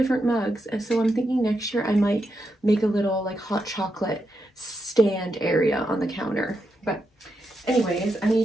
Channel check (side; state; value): both; normal; correlation 0.84